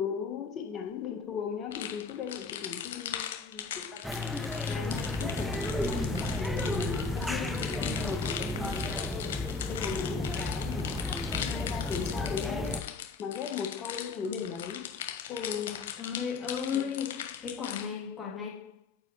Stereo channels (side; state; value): right; quieter; 4.3 dB